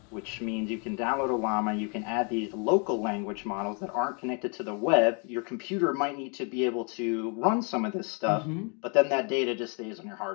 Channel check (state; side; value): quieter; right; 36.2 dB